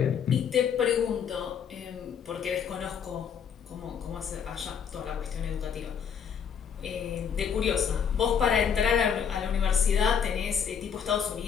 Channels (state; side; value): quieter; right; 7.5 dB